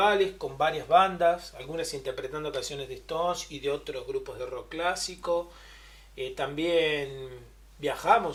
con varias bandas, algunas interpretando canciones de Stones y de otros grupos de rock clásico. También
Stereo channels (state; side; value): identical; both; correlation 1.00